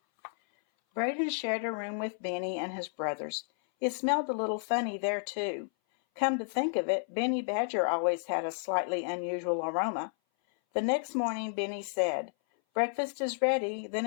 Brayden shared a room with Benny and his brothers. It smelled a little funny there, too. Come to think of it, Benny Badger always had a slightly unusual aroma. The next morning, Benny said, "Breakfast is ready, then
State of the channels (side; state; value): right; silent; 57 dB below the other